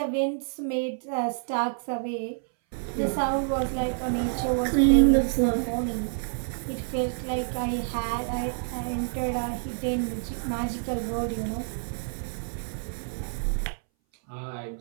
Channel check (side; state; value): left; silent; 59 dB below the other